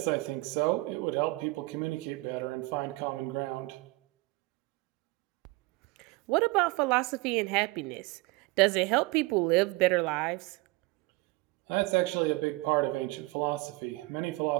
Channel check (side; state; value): left; quieter; 23.4 dB